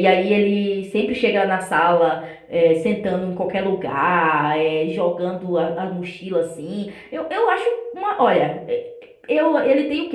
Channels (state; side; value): identical; both; correlation 1.00